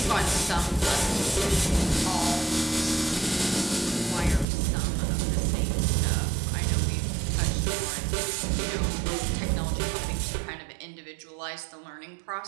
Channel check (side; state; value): left; drops out; at 4.5 s